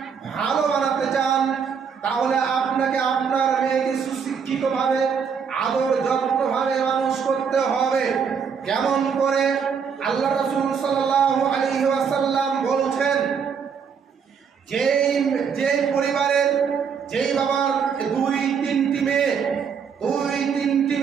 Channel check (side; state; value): left; quieter; 6.6 dB